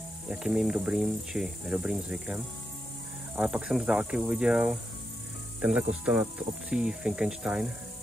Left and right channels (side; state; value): both; normal; correlation 0.85